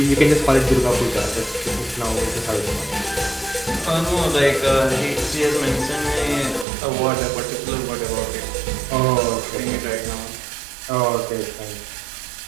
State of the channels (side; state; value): left; drops out; at 6.7 s